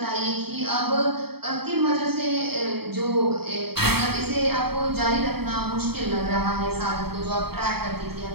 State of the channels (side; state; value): left; late; 0.96 ms